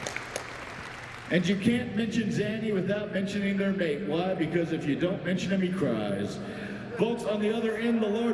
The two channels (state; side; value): identical; both; correlation 1.00